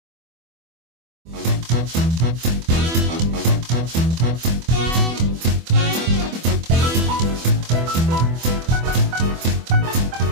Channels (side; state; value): left; late; 24 ms